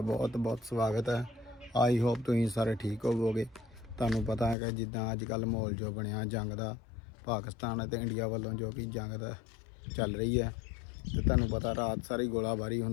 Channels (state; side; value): drops out; right; at 4.5 s